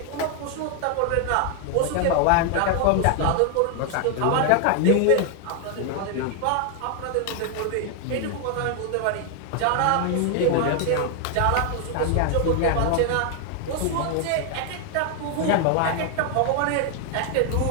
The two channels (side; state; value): both; different; correlation 0.00